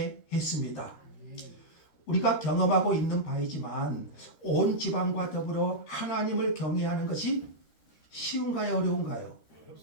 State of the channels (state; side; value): late; right; 13 ms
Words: 우리가 경험하고 있는 바이지만 온 지방과 더불어 하나님을 경외하는 것이 쉬운가요, 어려운가요?